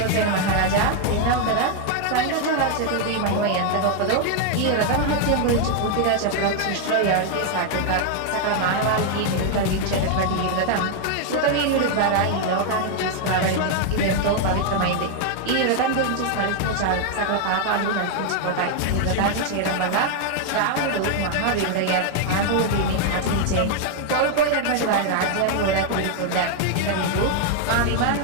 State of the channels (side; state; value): both; different; correlation 0.00